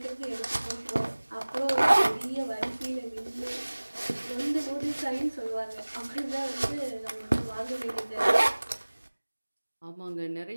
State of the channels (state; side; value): inverted; both; correlation -1.00